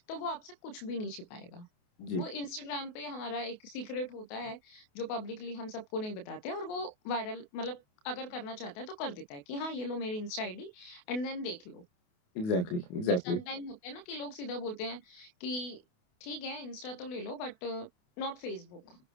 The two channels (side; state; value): right; late; 28 ms